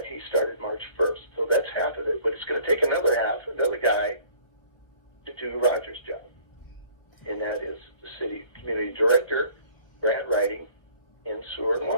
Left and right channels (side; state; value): right; late; 1.2 ms